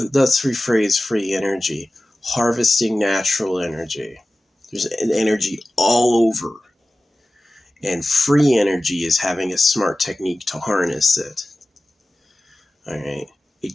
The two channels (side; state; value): both; normal; correlation 0.96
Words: Let's rephrase free energy. Harvesting natural energy. There's an energy all over. And free energy is having a smart technique to harness it. All right. It